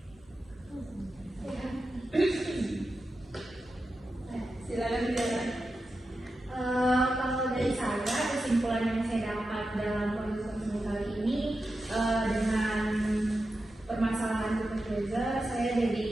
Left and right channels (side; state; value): both; normal; correlation 0.91